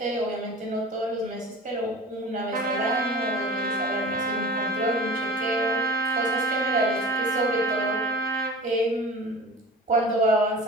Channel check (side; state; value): both; normal; correlation 0.37